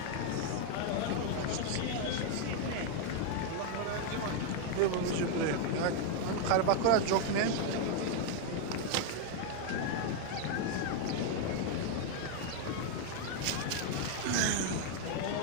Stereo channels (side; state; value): both; different; correlation 0.01